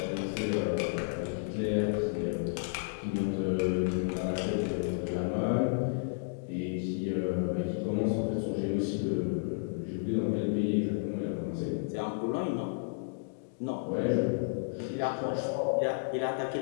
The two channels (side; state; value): right; silent; digital silence